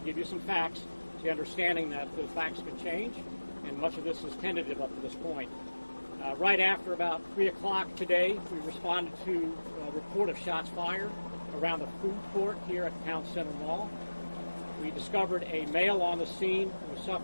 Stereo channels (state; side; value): inverted; both; correlation -1.00